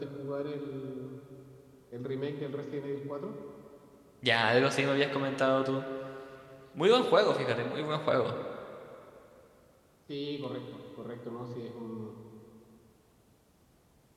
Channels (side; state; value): both; identical; correlation 1.00